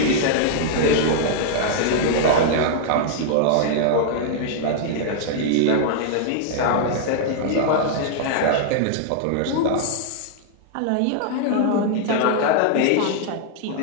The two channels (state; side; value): different; both; correlation -0.01